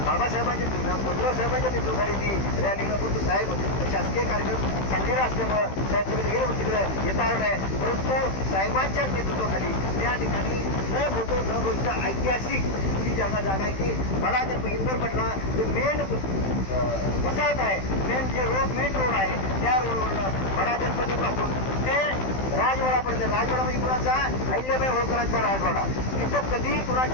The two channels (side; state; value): right; late; 15 ms